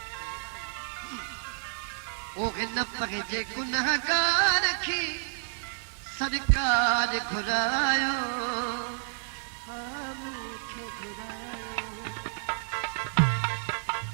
ओके न पगे गुनहगार की सरकार घुरायो मूंखे घुरायो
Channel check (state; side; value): silent; left; digital silence